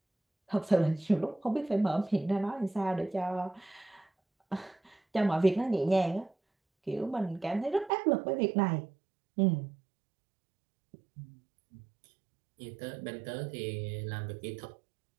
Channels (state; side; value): drops out; left; at 7.9 s